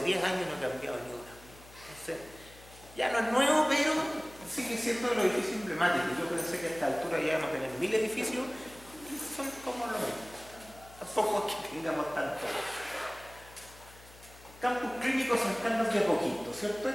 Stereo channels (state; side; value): noise; left; hum, 21 dB below the sound